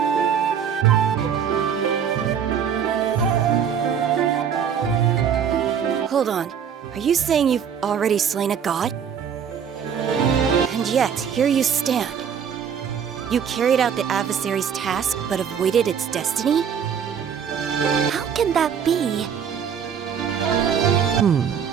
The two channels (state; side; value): quieter; left; 7.7 dB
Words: Hold on. Are you saying you've already slain a god? And yet, here you stand. You carried out the adversary's task, but avoided its destiny? How can that be?